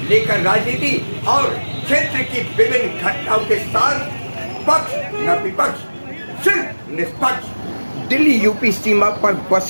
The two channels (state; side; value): inverted; both; correlation -1.00